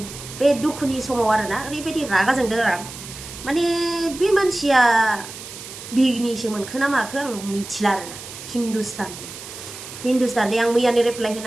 बे दुखुनि समाव आरोना ओरैबायदि रागा जोंदों आं माने बे मानसिया बिगनिसो मोनखो ना माखो आं मिथिला आरोना हिन्दुस्तान आं मैयानो रिप्लाइ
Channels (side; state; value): right; noise; hiss, 13 dB below the sound